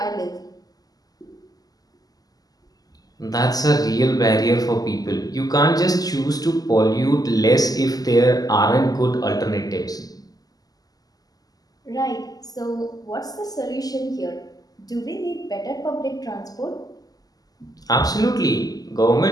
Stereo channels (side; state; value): right; late; 0.18 ms